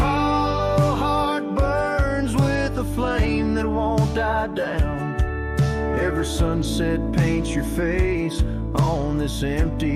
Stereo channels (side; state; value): both; identical; correlation 1.00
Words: heart burns with a flame that won't die down. Every sunset paints your face on this